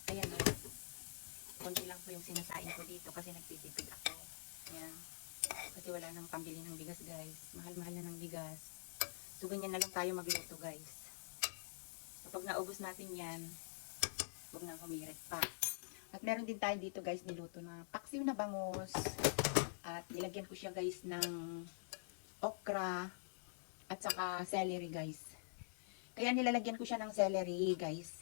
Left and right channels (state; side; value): silent; right; digital silence